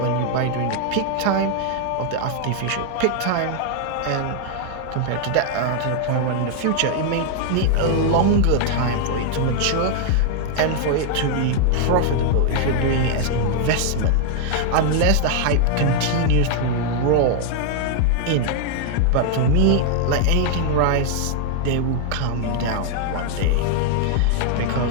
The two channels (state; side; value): different; both; correlation 0.00